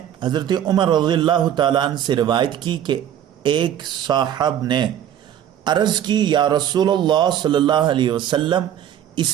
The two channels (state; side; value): quieter; left; 10.4 dB